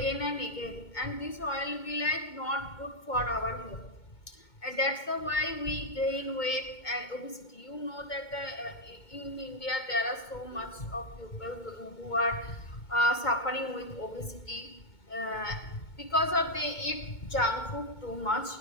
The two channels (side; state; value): right; late; 2.2 ms